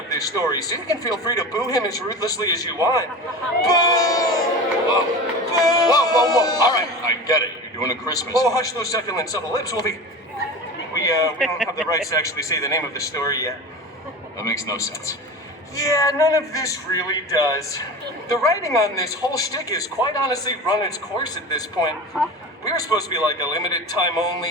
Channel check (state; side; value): normal; both; correlation 0.31